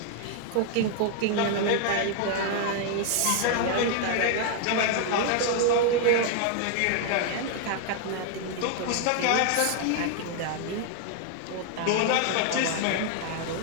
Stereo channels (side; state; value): both; different; correlation 0.00